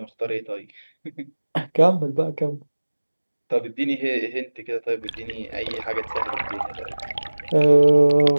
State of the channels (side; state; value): both; inverted; correlation -1.00